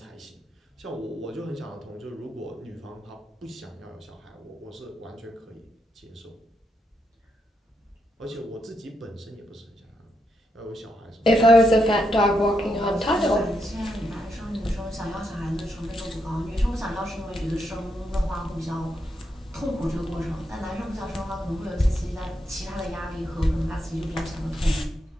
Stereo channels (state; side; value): normal; both; correlation 0.81